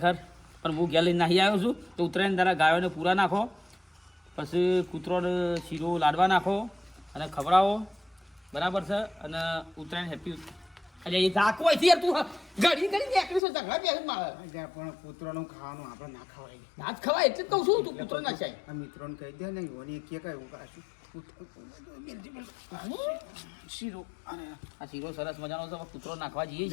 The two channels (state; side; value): drops out; right; at 13.4 s